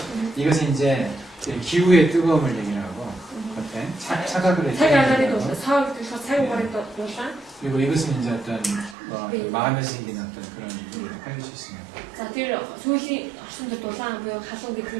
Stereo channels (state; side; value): drops out; left; at 9.0 s